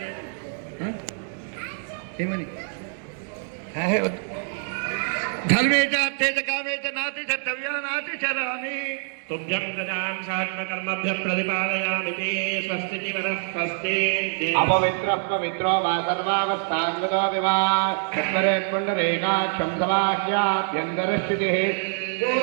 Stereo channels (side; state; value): left; silent; 57 dB below the other